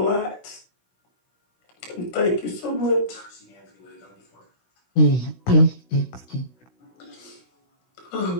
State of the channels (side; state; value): right; late; 16 ms